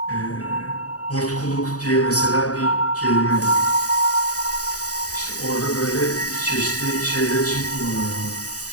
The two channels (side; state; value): right; late; 0.67 ms